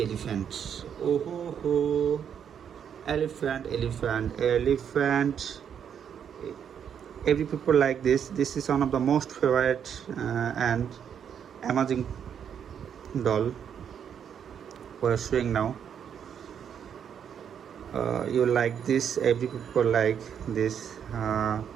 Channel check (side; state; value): left; quieter; 8.2 dB